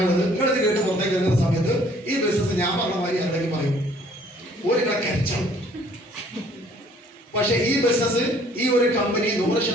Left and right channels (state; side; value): normal; both; correlation 0.58